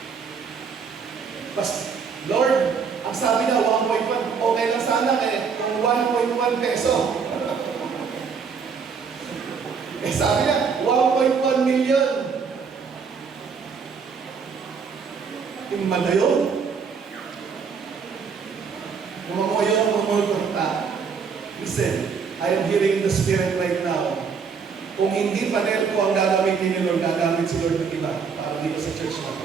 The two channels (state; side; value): quieter; left; 5.9 dB